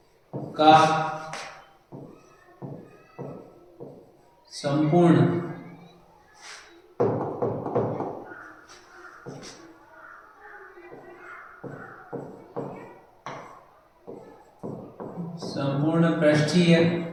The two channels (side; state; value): both; identical; correlation 1.00